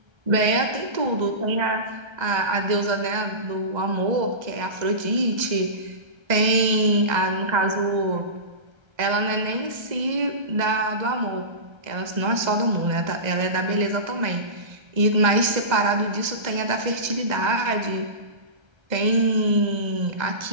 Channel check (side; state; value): left; late; 1.3 ms